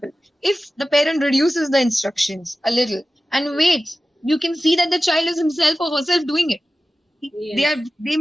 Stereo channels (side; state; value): both; normal; correlation 0.95